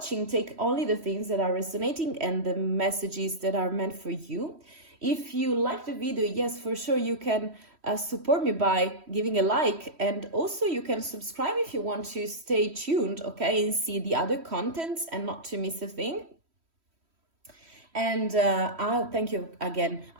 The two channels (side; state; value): left; late; 3.1 ms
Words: Take only the things that are resonating and the messages that are meant for you. If you like the video, yes, for sure, you can support me by giving a like, and also you can subscribe if you want to stay tuned, okay, and see the other contents and not to miss a thing. And I'll thank you again.